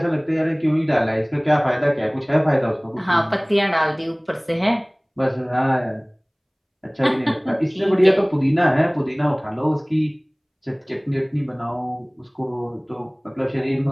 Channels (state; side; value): identical; both; correlation 1.00